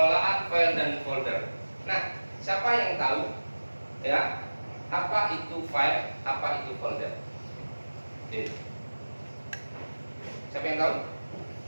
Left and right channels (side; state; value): both; inverted; correlation -1.00